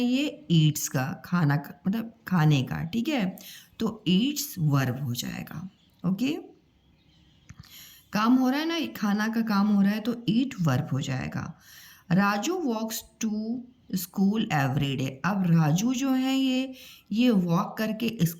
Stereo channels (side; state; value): both; identical; correlation 1.00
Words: ये ईट्स का खाना मतलब खाने का। ठीक है, तो ईट्स वर्ब हो जाएगा। ओके, काम हो रहा है ना, खाना का काम हो रहा है, तो ईट वर्ब हो जाएगा। Raju walks to school every day. अब राजू जो है ये वॉक करके